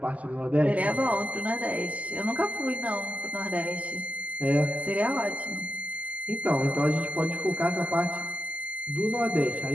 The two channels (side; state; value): left; late; 0.072 ms